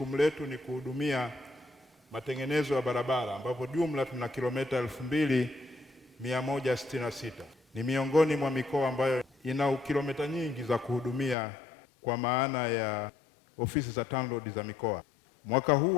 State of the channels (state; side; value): drops out; right; at 11.4 s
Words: letu ni kuhudumia matengenezo ya barabara ambapo jumla tuna kilomita 2166. Ni miongoni mwa mikoa ambayo ina kilomita nyingi za kuhudumia kwa maana ya ofisi za TANROADS za mikoa. Mwaka huu